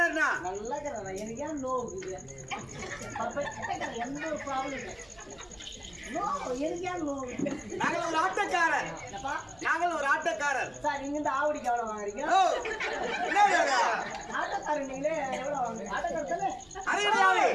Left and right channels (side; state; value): right; noise; hum, 27 dB below the sound